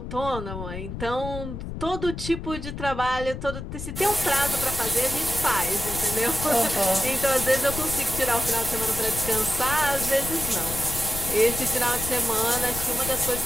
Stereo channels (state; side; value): noise; left; rumble, 7 dB below the sound